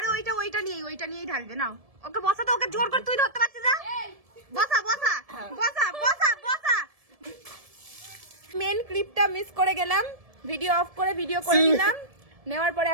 ওইটা নিয়েই ঢালবে। নাও ওকে বসা, তো ওকে জোর করে তুই ধরতে পারছিস না। বসা বসা বসা বসা বসা। মেন ক্লিপটা মিস করে গেলাম, ভিডিও অফ করে ভিডিও করে নিলাম, নেওয়ার পরে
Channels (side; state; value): left; late; 1.7 ms